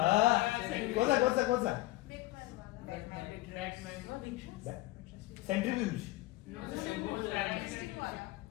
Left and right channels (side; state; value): right; quieter; 18.3 dB